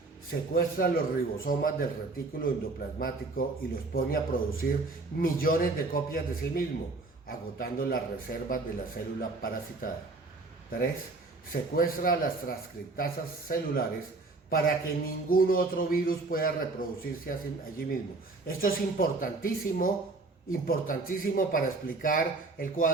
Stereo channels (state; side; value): quieter; left; 3.5 dB